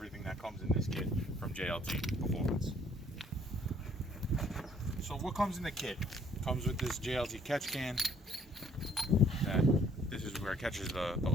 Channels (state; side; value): normal; both; correlation 0.62